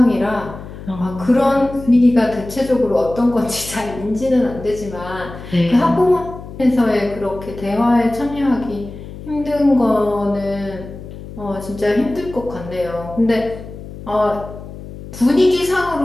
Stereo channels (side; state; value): left; noise; hum, 13 dB below the sound